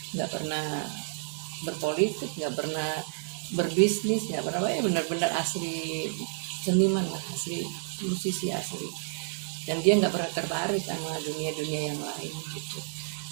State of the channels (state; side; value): silent; left; 58 dB below the other